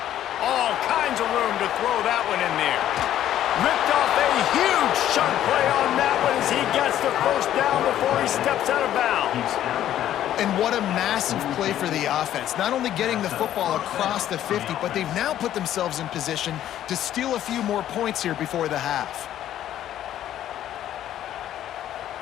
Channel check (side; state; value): right; quieter; 11.8 dB